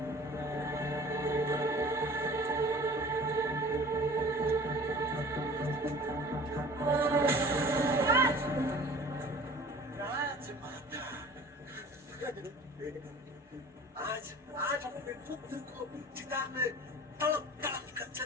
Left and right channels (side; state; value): both; normal; correlation 0.45